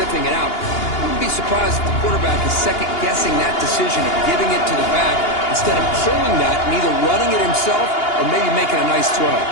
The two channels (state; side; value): late; right; 2.8 ms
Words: it out. I wouldn't be surprised if the quarterback is second-guessing that decision of giving it to the back instead of pulling that and either running it himself or maybe making a nice throw.